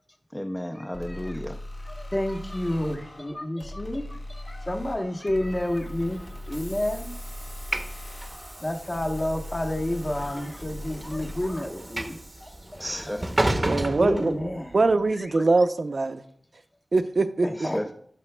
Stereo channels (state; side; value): normal; both; correlation 0.97